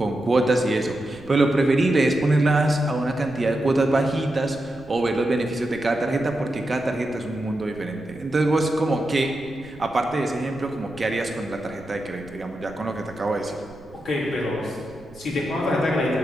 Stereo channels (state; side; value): noise; right; rumble, 23 dB below the sound